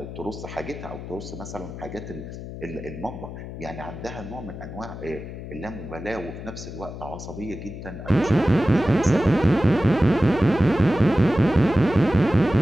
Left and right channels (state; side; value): noise; left; hum, 10 dB below the sound